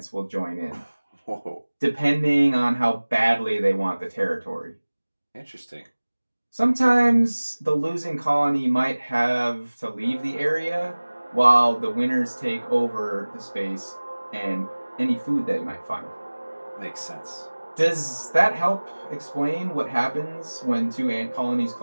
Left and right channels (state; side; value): inverted; both; correlation -1.00